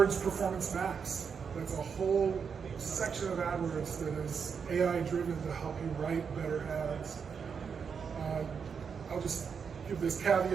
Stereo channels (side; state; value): left; quieter; 6.3 dB